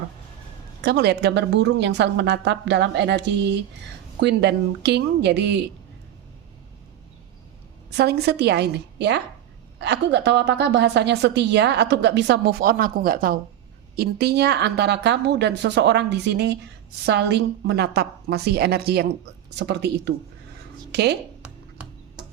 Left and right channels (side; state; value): left; quieter; 11.5 dB